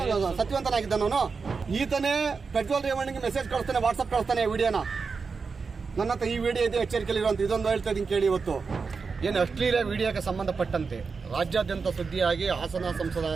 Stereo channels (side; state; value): left; quieter; 5.0 dB